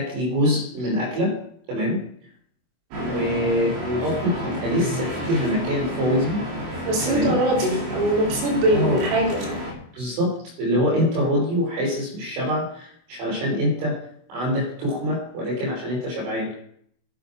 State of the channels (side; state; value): left; late; 24 ms